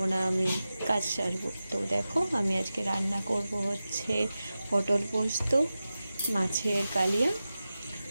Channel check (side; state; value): both; inverted; correlation -0.94